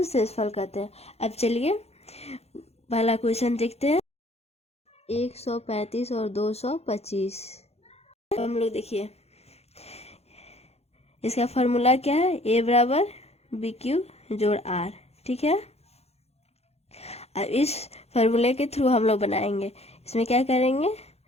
शेषफल कहते हैं। अब चलिए पहला क्वेश्चन देखते हैं। 135 और 225। हम लोग देखिए इसका फॉर्मूला क्या है, ए बराबर बी क्यू जोड़ आर। ठीक है, अब इस फॉर्मूले के थ्रू हम लोग बनाएंगे। इसमें क्या करेंगे,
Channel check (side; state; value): right; late; 0.30 ms